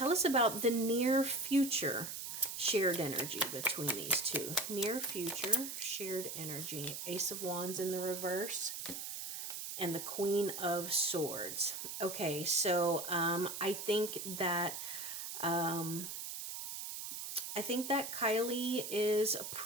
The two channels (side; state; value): right; noise; hiss, 6 dB below the sound